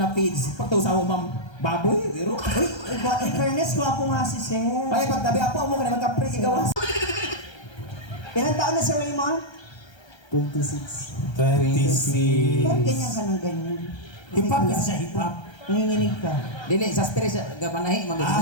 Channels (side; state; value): right; late; 1.3 ms